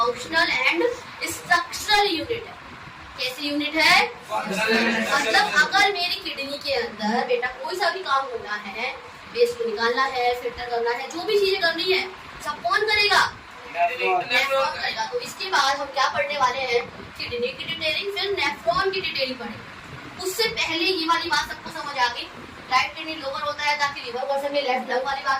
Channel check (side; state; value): both; identical; correlation 1.00